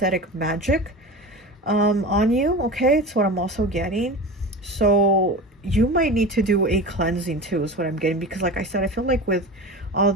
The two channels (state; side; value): normal; both; correlation 0.30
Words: magic on you, okay? It's what I'm also getting. So you might need to do a cleansing too, is what I'm getting, because like I said, I feel like with all